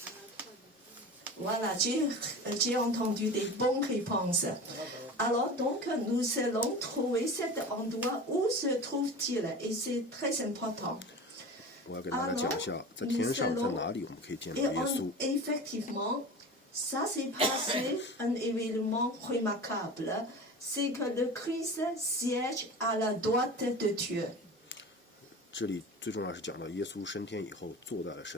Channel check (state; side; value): normal; both; correlation 0.33